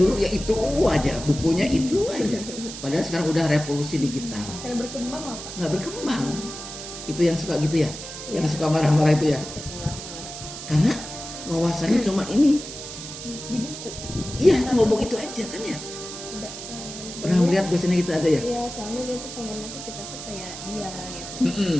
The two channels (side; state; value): right; noise; hiss, 10 dB below the sound